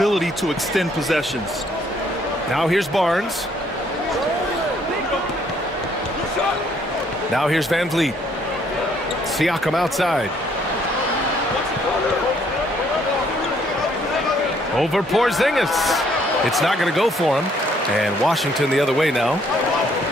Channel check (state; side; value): normal; both; correlation 0.66